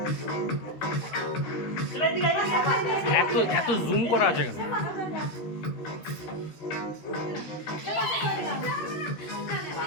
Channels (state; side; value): late; right; 13 ms